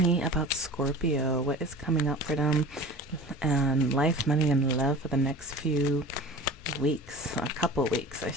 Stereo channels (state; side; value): normal; both; correlation 0.38